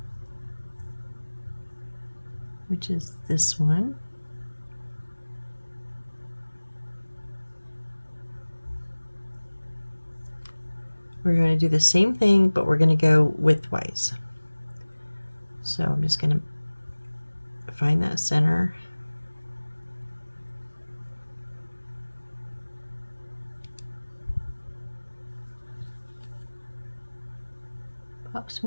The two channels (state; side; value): inverted; both; correlation -1.00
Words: which is this one, we're going to do the same thing, but we're going to go widthwise. So I'm just going to find that center. Pop